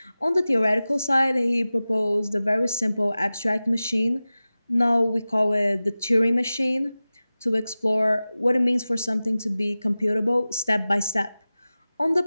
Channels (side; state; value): both; inverted; correlation -0.96